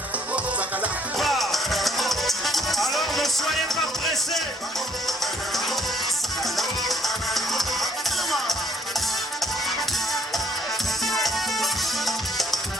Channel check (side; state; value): both; normal; correlation 0.65